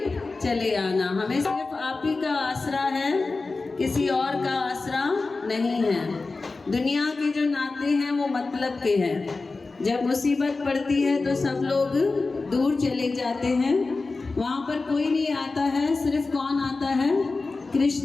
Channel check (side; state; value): right; quieter; 3.7 dB